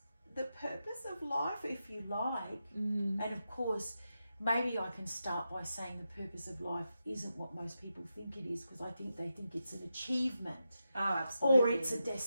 the purpose of life, if you like? And of course, maybe I can start by saying the purpose of life isn't what most people think it is, because I think they think it's an achievement. Absolutely. Or it's a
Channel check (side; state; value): both; inverted; correlation -0.88